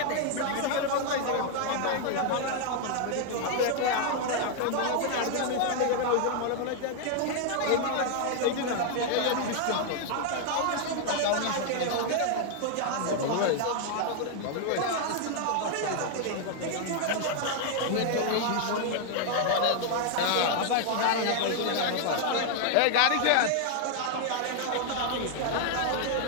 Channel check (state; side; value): different; both; correlation 0.00